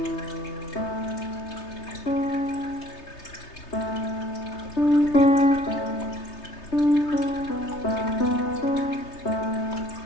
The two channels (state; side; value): late; right; 3.3 ms